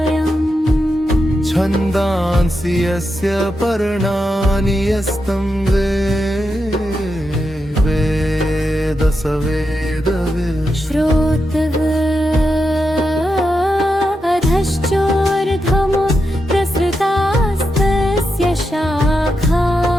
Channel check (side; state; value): both; normal; correlation 0.86